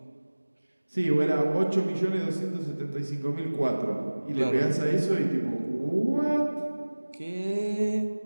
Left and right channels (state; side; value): inverted; both; correlation -1.00